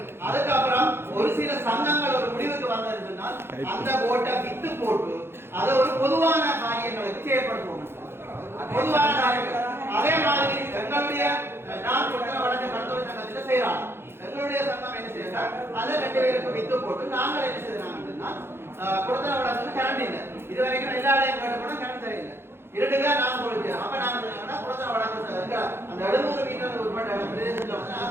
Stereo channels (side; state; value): left; late; 0.11 ms